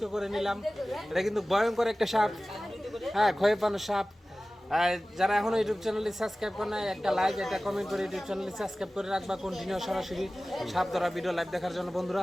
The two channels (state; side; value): normal; both; correlation 0.97